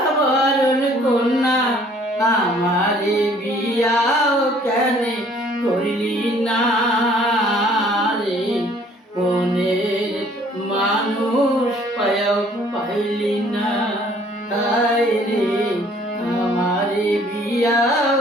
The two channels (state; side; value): normal; both; correlation 0.58